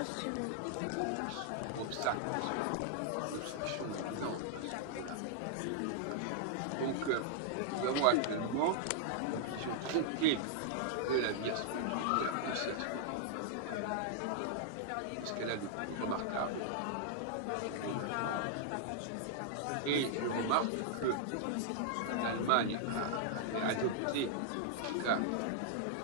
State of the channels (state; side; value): different; both; correlation -0.01